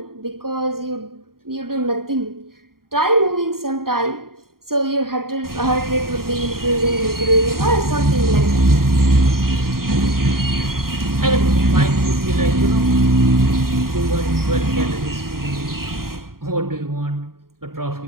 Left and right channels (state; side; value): late; left; 0.92 ms